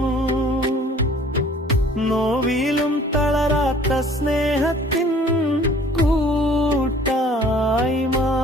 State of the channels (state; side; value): normal; both; correlation 0.53